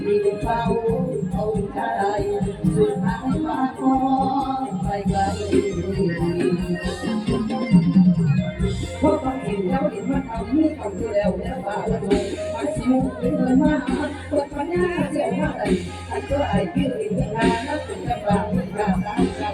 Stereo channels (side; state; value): both; identical; correlation 1.00